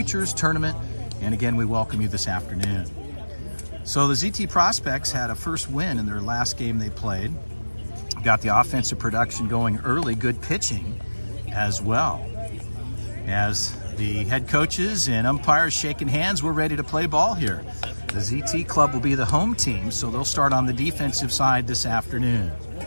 Tournament, and again, we welcome you this afternoon. So the ZT Prospects had a first win in their last game they played. Got the offensive production going early, good pitching as well. As the head coaches and umpires shaking hands, we're ready to play ball here. The ZT Club will be the home team, so they'll start on the defensive side this afternoon.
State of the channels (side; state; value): both; inverted; correlation -1.00